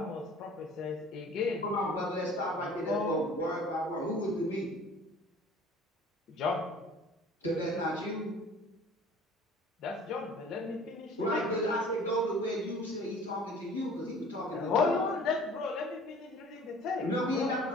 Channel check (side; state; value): both; normal; correlation 0.47